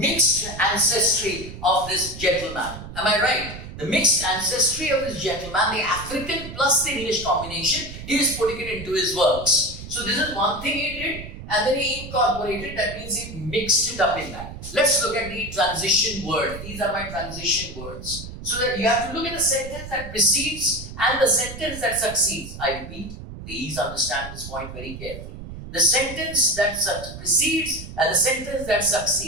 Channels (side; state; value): right; noise; rumble, 12 dB below the sound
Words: ancestry of this gentleman. Am I right? The mixed ancestry of this gentleman, the African plus the English combination, he is putting it into his works. So this is one thing he did, and then he incorporated, that means he mixed it up in that. Let's look at the transition word. These are my transition words. So that you have to look at the sentence that precedes and the sentence that succeeds. I repeat, please understand this point very carefully. The sentence that precedes and the sentence that